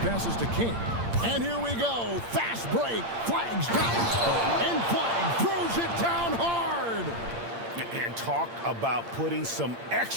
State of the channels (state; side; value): late; left; 8.7 ms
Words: passes to King. And here we go. Fast break. Flag's got it. And Flag throws it down hard. And talk about putting some